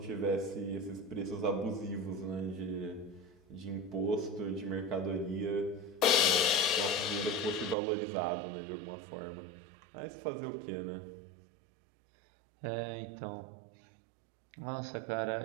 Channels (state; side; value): drops out; left; at 7.8 s